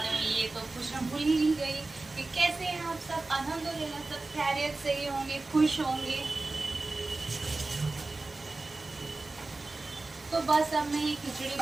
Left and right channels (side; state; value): left; quieter; 3.3 dB